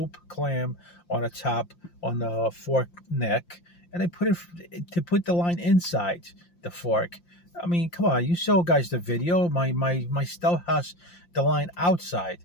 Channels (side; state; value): right; late; 5.8 ms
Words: clam on the top on the fork neck, and they put it to put the line inside the fork. I mean, come on, you show guys the video. My stove has the line outside.